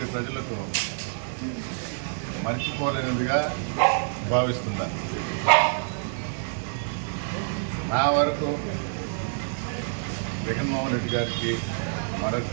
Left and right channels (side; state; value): left; silent; digital silence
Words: ప్రజలకు మర్చిపోలేనిదిగా భావిస్తున్నా. నా వరకు జగన్మోహన్ రెడ్డి గారికి